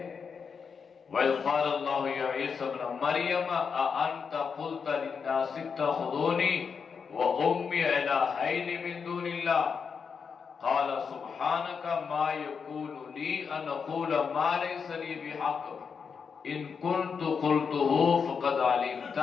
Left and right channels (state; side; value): quieter; right; 6.0 dB